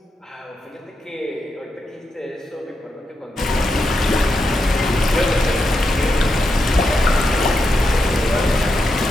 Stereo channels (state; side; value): normal; both; correlation 0.85